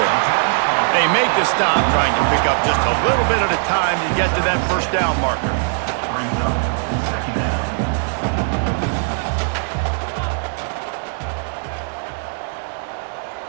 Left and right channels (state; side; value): silent; left; 66 dB below the other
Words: They make the stop, trying to pick up just a little bit at a time to get to that first down marker.